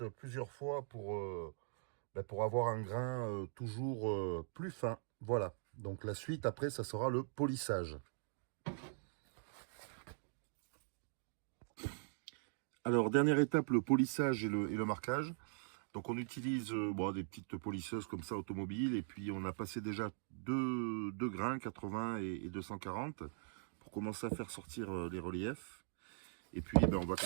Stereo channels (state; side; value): silent; left; digital silence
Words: plusieurs fois pour avoir un grain toujours plus fin. Voilà, donc la suite après ça sera le polissage. Alors dernière étape, le polissage et le marquage. Donc on utilise des petites polisseuses comme ça automobiles et puis on a passé déjà deux grains, 80 et 240 pour commencer à faire sortir les reliefs. Et puis on va